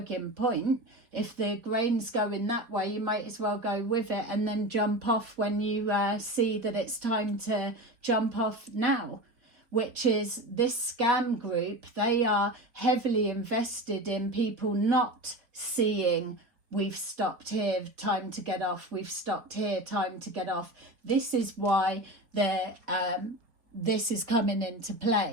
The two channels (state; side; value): late; left; 4.4 ms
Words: point. If the grain's going that way, you might as well go with it and then jump off when you see that it's time to jump off now. Which is this scam group. They are heavily invested in people not seeing, we've stopped here, time to get off, we've stopped here, time to get off. This is why this is coming into